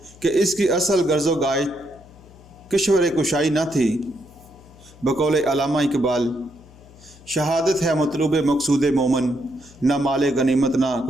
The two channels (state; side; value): noise; left; hum, 23 dB below the sound